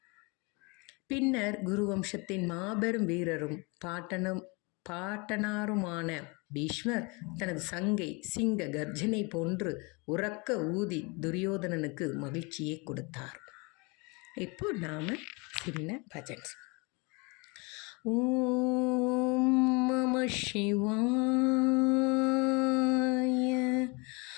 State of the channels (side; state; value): right; quieter; 29.2 dB